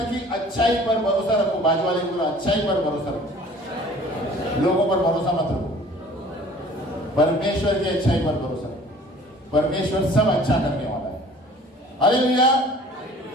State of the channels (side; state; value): both; normal; correlation 0.49